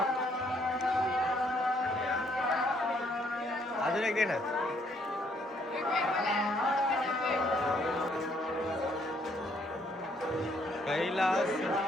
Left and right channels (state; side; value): normal; both; correlation 0.68